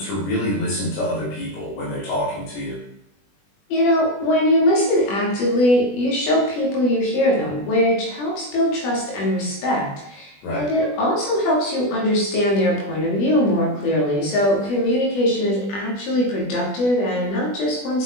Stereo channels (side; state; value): right; late; 20 ms